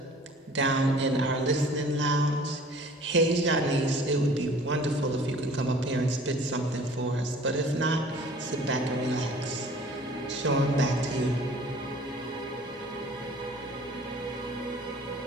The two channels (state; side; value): normal; both; correlation 0.50